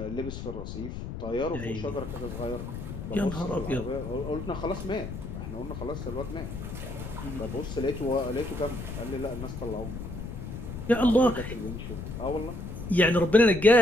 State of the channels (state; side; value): noise; left; rumble, 8 dB below the sound